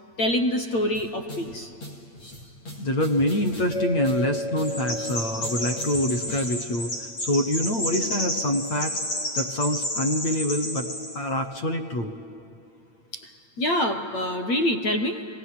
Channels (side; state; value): right; late; 8.8 ms